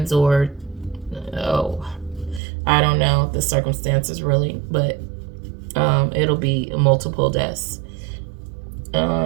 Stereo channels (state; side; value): drops out; left; at 2.4 s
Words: or, I don't know the circumstances really, but it'll be multiple deaths.